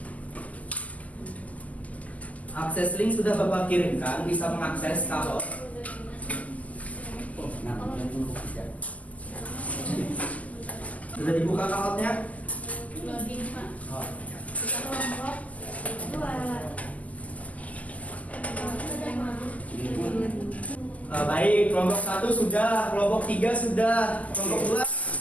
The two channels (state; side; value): late; right; 0.074 ms